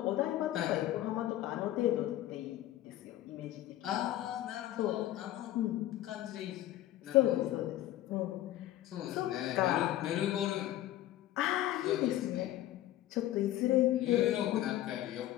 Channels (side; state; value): right; quieter; 14.1 dB